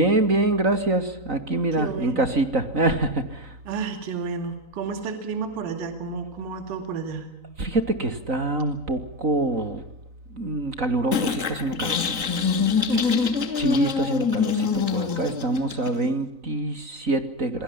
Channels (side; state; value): left; late; 3.9 ms